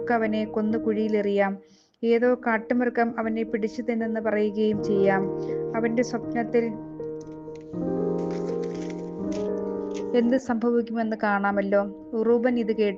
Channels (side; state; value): both; identical; correlation 1.00